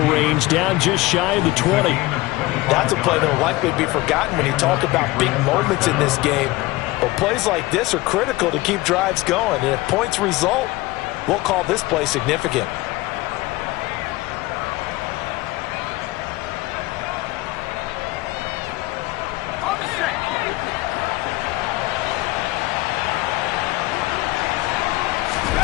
range, down just shy of the 20. That's a play that will likely be forgotten when you talk about big moments in this game. But plays like this are critical to keep drives going. And if points result, we'll call this play significant.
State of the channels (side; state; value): right; quieter; 19.9 dB